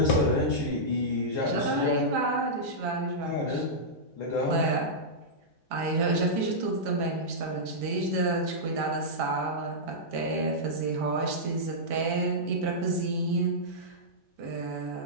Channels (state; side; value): normal; both; correlation -0.12